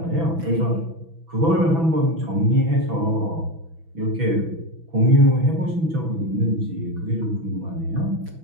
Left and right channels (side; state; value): left; late; 6.1 ms